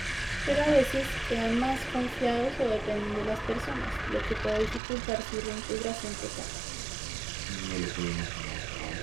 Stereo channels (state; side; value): drops out; left; at 4.8 s